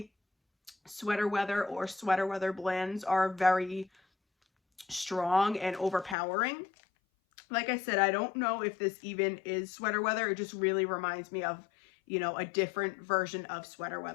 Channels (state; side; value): drops out; right; at 6.2 s